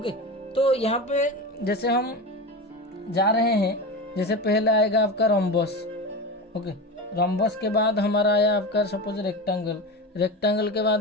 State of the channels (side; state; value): both; normal; correlation 0.24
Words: तो यहाँ पे जैसे हम जा रहे हैं, जैसे पहले आएगा आपका रंबस। ओके, रंबस के बाद हमारा आया आपका सपोज रेक्टेंगल, रेक्टेंगल के